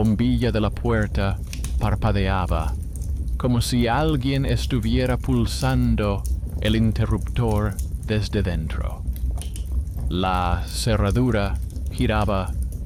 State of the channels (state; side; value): identical; both; correlation 1.00